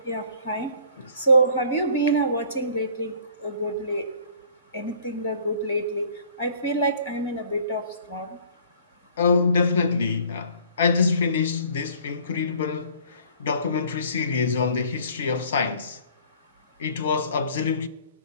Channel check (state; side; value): inverted; both; correlation -0.54